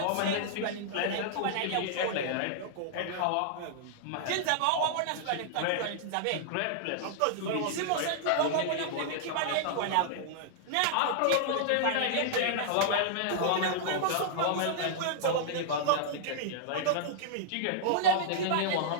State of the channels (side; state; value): both; different; correlation -0.01